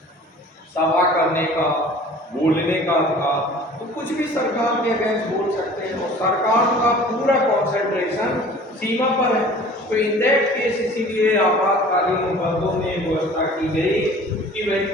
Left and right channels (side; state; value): both; normal; correlation 0.46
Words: सभा करने का, बोलने का अधिकार, तो कुछ भी सरकार के अगेंस्ट बोल सकते हैं, और सरकार का पूरा कॉन्सेंट्रेशन सीमा पर है। तो इन दैट केस इसीलिए आपातकालीन उपबंधों में व्यवस्था की गई कि वह